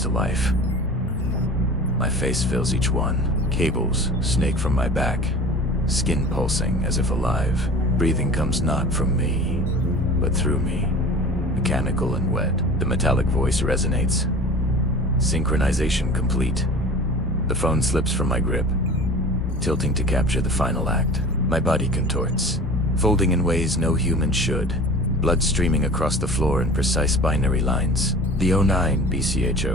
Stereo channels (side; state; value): both; normal; correlation 0.39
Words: to life. My face fills each one. Cables snake from my back, skin pulsing as if alive. Breathing comes not from me, but through me. Mechanical and wet. The metallic voice resonates. Synchronization complete. The phone slips from my grip, tilting to capture the final act. My body contorts, folding in ways no human should. Blood streaming across the floor in precise binary lines. The 09